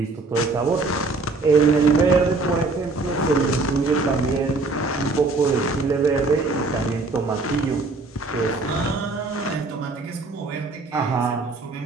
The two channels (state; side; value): quieter; left; 3.6 dB